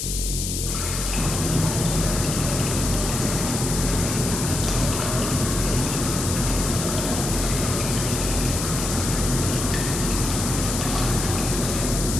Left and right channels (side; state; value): left; noise; hiss, 3 dB below the sound